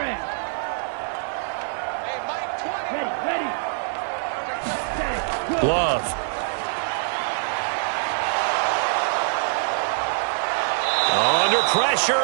Hey, Mike, 20. Ready. Love. Under pressure,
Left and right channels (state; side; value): silent; left; digital silence